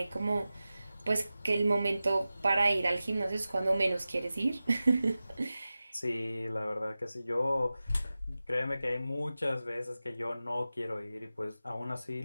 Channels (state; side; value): inverted; both; correlation -0.95